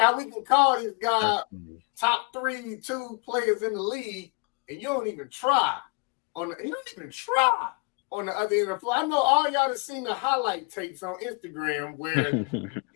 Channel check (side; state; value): right; quieter; 33.5 dB